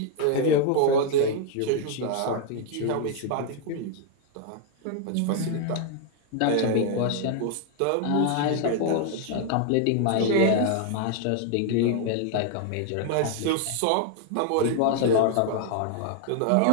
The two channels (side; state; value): both; different; correlation 0.00